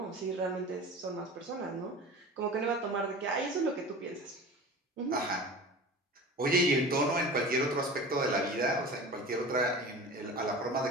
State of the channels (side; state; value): both; normal; correlation 0.36